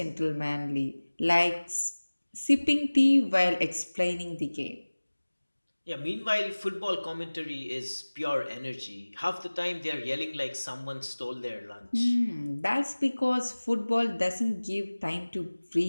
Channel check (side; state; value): both; inverted; correlation -1.00